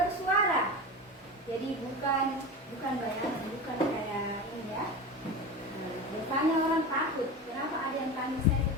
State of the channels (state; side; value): normal; both; correlation 0.27